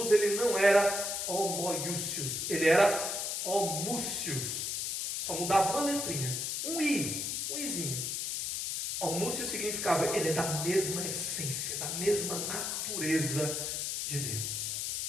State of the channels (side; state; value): left; noise; hiss, 1 dB below the sound